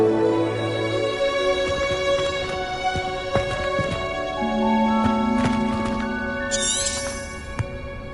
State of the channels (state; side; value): identical; both; correlation 1.00